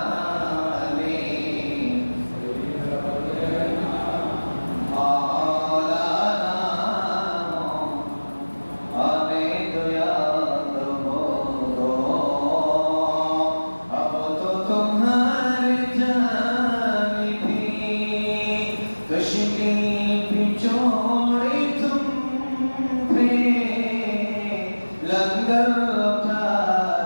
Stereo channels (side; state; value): both; inverted; correlation -1.00